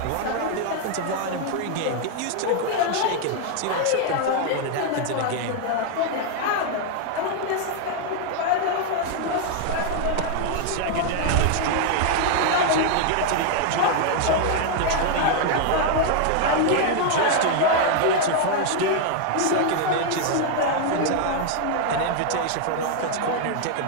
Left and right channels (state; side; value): different; both; correlation 0.00